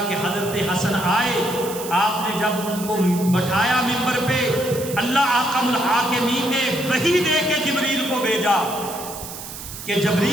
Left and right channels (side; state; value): right; noise; hiss, 11 dB below the sound